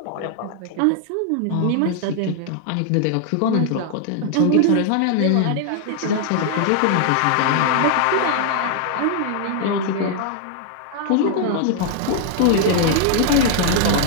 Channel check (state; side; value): different; both; correlation 0.00